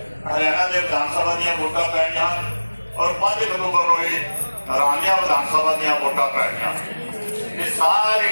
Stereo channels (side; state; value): both; inverted; correlation -1.00